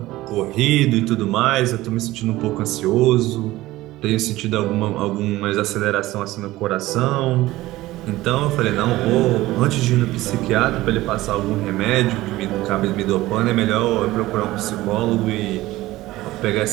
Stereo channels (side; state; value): left; quieter; 17.4 dB